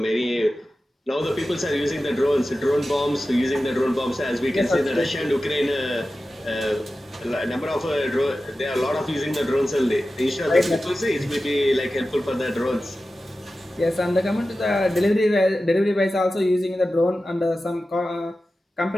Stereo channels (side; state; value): both; normal; correlation 0.94